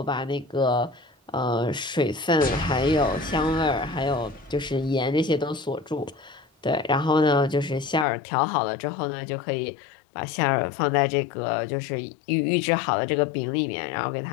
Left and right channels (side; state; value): right; drops out; at 8.1 s